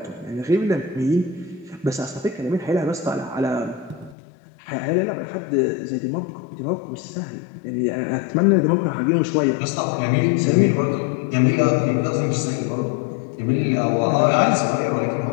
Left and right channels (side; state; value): right; drops out; at 4.2 s